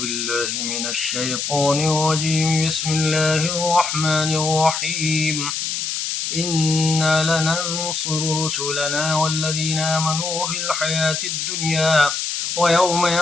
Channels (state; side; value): noise; left; hiss, 2 dB below the sound